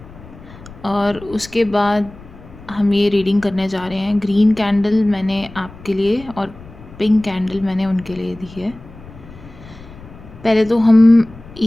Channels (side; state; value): left; noise; rumble, 19 dB below the sound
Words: और उसके बाद हम ये रीडिंग करने जा रहे हैं। ग्रीन कैंडल मैंने आपके लिए और पिंक कैंडल मैंने उनके लिए दी है। पहले तो हम